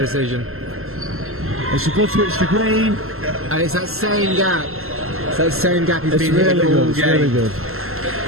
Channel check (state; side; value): late; left; 0.62 ms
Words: decision. It's a good switch to green. And it's that same gap. It's that same gap he's It's been really hitting good. all It's game. really good.